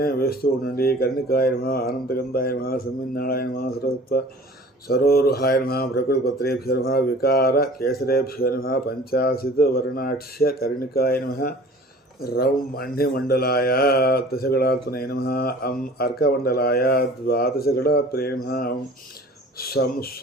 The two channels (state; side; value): normal; both; correlation 0.46